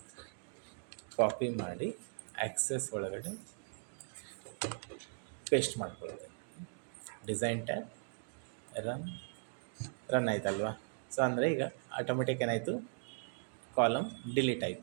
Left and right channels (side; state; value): left; silent; digital silence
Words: ಕಾಪಿ ಮಾಡಿ ಆಕ್ಸೆಸ್ ಒಳಗಡೆ ಪೇಸ್ಟ್ ಮಾಡ್ಕೊಳ್ತೀನಿ. ಡಿಸೈನ್ ಟ್ಯಾಬ್, ರನ್ ಆಯ್ತಲ್ವಾ? ಸೊ ಅಂದರೆ ಈಗ ಆಟೋಮೆಟಿಕ್ ಏನಾಯಿತು? ಕಾಲಮ್ ಡಿಲೀಟ್